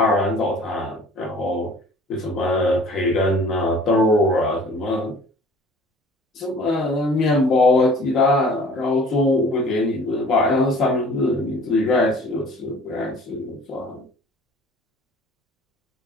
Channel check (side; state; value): both; normal; correlation 0.49